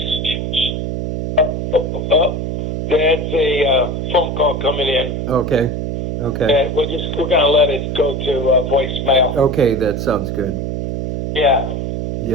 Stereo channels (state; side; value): noise; right; hum, 3 dB below the sound